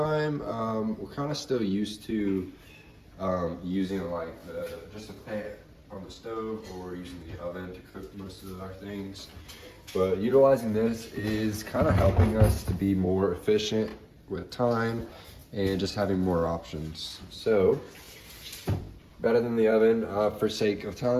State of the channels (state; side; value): identical; both; correlation 1.00